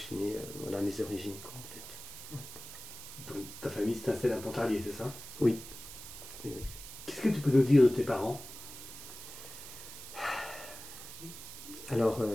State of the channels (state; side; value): noise; right; hiss, 12 dB below the sound